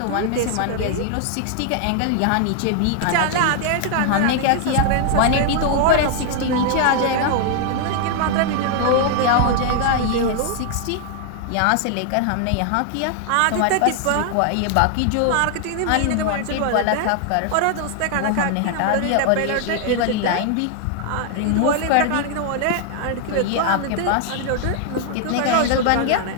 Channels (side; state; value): both; different; correlation 0.00